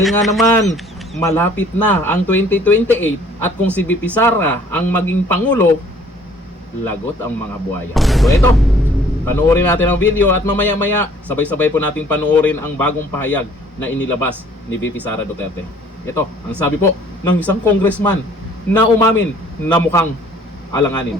nga naman, malapit na ang 2028 at kung si VP Sara ang maging pangulo, lagot ang mga buhaya. So ito, panoorin natin ang video at mamaya-maya sabay-sabay po natin panoorin ang bagong pahayag na inilabas ni VP Sara Duterte. Ito, ang sabi po ng isang congressman na umamin na mukhang alanganin.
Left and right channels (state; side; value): normal; both; correlation 0.56